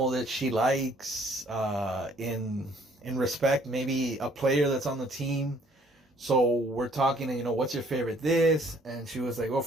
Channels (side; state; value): both; normal; correlation 0.61